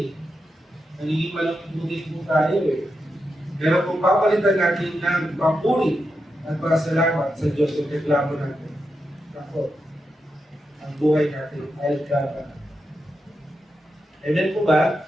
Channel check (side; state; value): both; normal; correlation 0.87